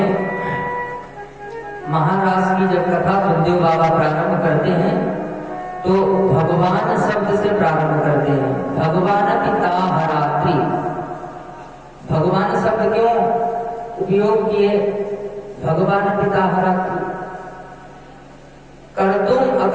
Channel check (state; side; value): identical; both; correlation 1.00